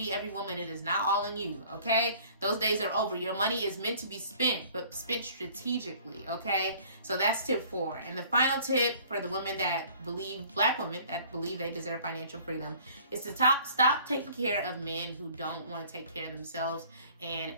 every woman. It is not all in you. Okay. Those days are over. Your money is meant to be spent, but spent strategically. Okay. So that's tip 4. And the final tip for the women that Black women that believe they deserve financial freedom, is to stop taking care of men who don't want to take care of themselves and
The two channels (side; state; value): both; inverted; correlation -0.53